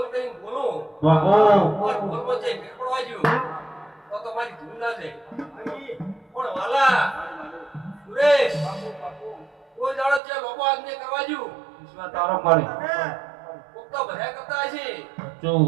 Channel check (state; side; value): drops out; left; at 10.2 s